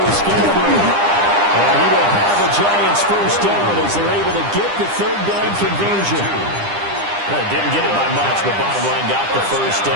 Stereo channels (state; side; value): late; left; 9.9 ms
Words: with Scatterboo. And he will have the Giants first down as they're able to get the 3rd down conversion. Didn't get it by much, but bottom line got the first